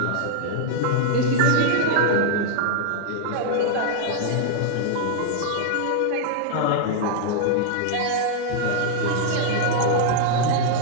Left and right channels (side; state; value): both; different; correlation 0.00